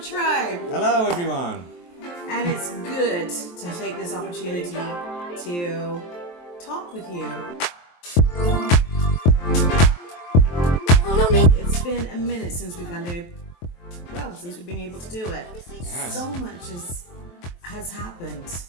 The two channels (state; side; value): late; right; 23 ms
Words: Hello, tribe. Hello, everyone. And it's good to take this opportunity to talk with you. It's been a minute since we've been able to do it. Yes. So much has happened.